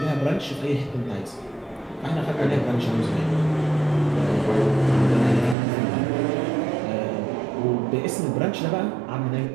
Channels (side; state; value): left; drops out; at 5.6 s